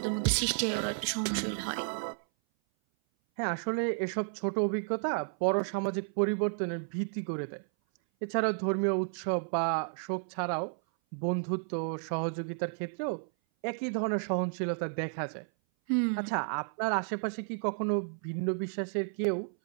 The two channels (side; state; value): left; silent; 56 dB below the other